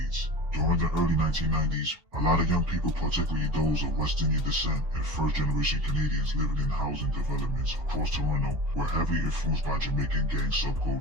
During the early 1990s, a lot of young people, particularly those of West Indian descent and first-generation Canadians living in housing developments across Toronto, were heavily influenced by Jamaican gang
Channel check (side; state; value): left; late; 2.7 ms